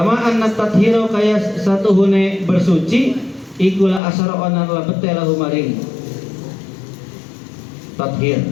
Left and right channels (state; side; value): drops out; right; at 4.0 s